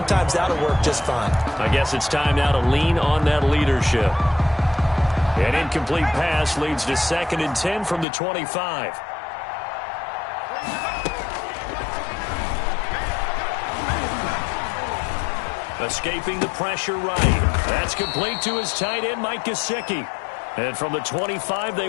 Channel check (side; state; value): right; drops out; at 8.1 s